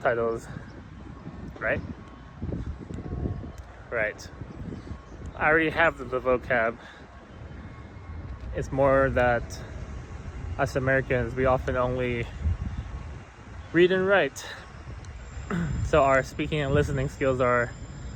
right? Right. I already have the vocab. It's more that us Americans, we often only read and write. So our speaking and listening skills are,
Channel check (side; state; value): both; identical; correlation 1.00